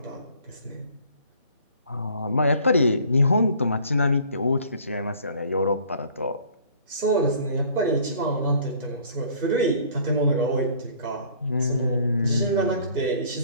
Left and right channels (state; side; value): inverted; both; correlation -0.53